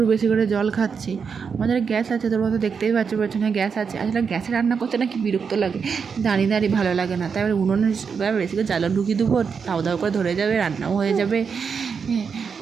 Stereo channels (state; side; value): quieter; left; 6.0 dB